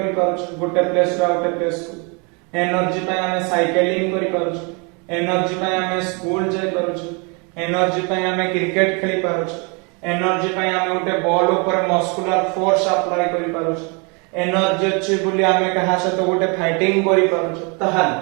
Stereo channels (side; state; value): left; quieter; 32.6 dB